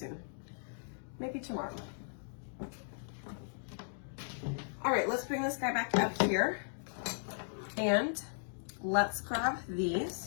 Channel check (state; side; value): silent; right; digital silence